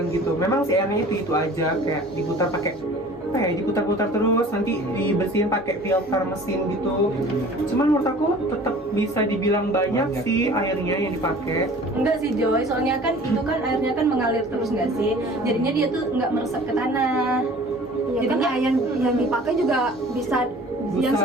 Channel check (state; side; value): normal; both; correlation 0.46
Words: gitu. Memang si airnya itu aja, kayak diputar pakai diputar-putar terus, nanti dibersihin pakai filter mesin gitu. Cuman menurut aku tetap bisa dibilang banyak sih airnya yang dipakai. Enggak sih Joy, soalnya kan itu kan airnya kan mengalir terus nggak sih? Jadinya dia tuh nggak meresap ke tanah. Ya, Jadinya kan yang dipakai juga bisa yang Busa,